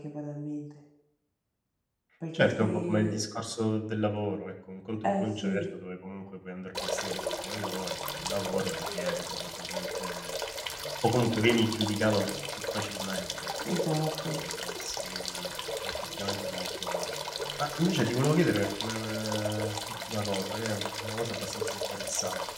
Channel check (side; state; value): both; identical; correlation 1.00